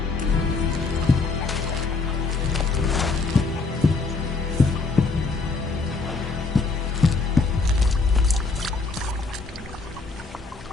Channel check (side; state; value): right; quieter; 4.0 dB